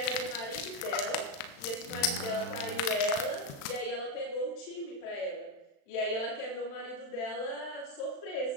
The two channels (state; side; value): late; right; 35 ms